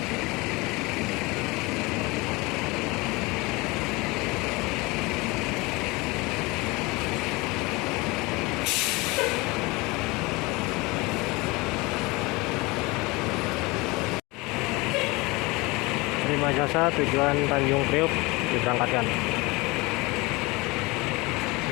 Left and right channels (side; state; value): right; quieter; 24.1 dB